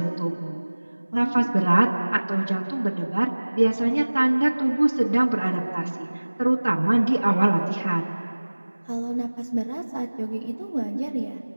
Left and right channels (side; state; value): both; inverted; correlation -1.00